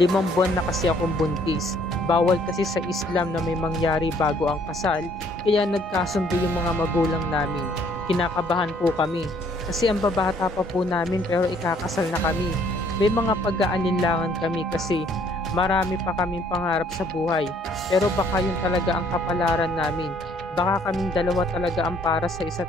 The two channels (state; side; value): normal; both; correlation 0.62